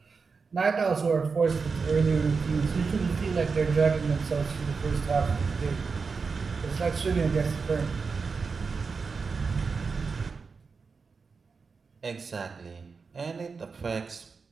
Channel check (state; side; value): quieter; left; 4.9 dB